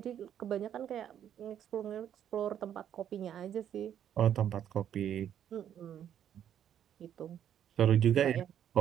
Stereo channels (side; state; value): left; quieter; 9.8 dB